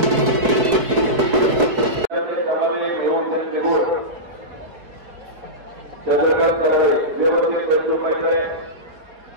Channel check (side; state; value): left; late; 4.8 ms